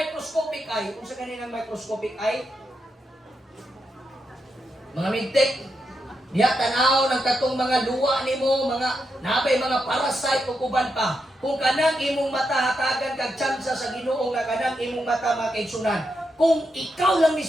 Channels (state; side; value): normal; both; correlation 0.84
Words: eye. Kung sa kaninang microscopic eye, mga midtek, diya tanaw ng katong mga luwa nimo, mga nabay mga parasite ug uban pa. Kung kanang imong mata hatagan kag tsansa sa Ginoo nga kanang imong mata makaigsunan. Kung ikaw lang